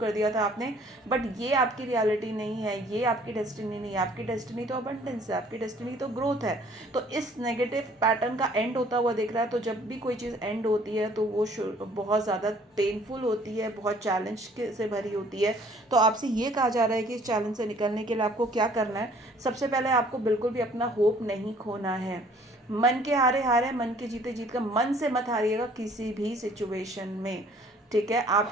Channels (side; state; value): both; normal; correlation 0.57